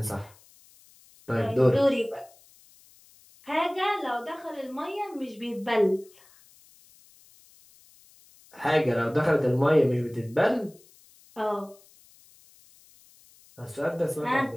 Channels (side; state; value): left; noise; hiss, 27 dB below the sound